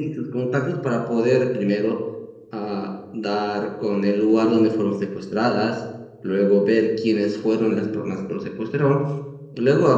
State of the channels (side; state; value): both; identical; correlation 1.00